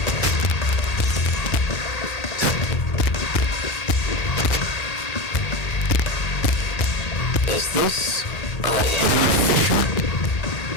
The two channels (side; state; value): right; late; 1.8 ms